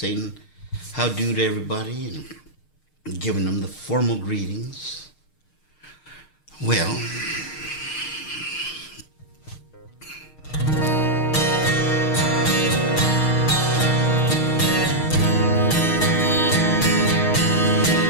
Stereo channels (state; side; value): late; right; 6.5 ms